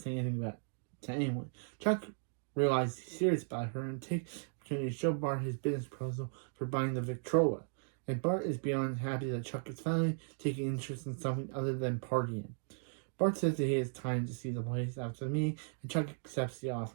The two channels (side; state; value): left; silent; digital silence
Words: anything about it to anyone. Chuck realizes he's serious about her and takes the opportunity to show Bart his business proposal for buying the Victrola. And Bart is beyond happy that Chuck is finally taking interest in something other than partying. Bart says that he has time to see the place after the meeting, and Chuck accepts the